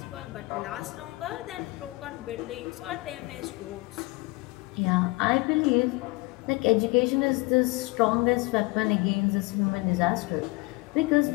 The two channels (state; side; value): quieter; right; 24.2 dB